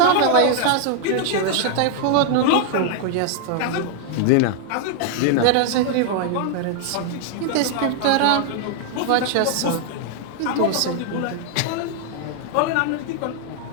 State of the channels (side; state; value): both; different; correlation 0.00